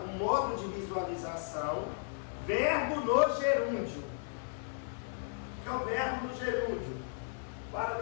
modo de visualização. Verbo no gerúndio. O que é o verbo no gerúndio? Para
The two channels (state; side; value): silent; right; digital silence